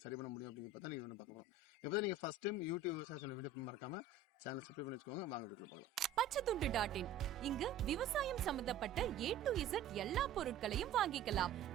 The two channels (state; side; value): quieter; left; 5.0 dB